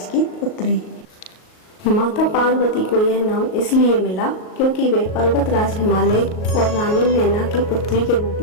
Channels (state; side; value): late; right; 38 ms